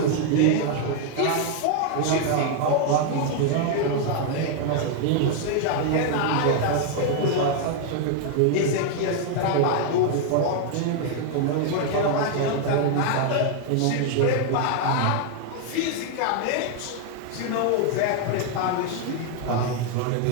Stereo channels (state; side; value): different; both; correlation 0.00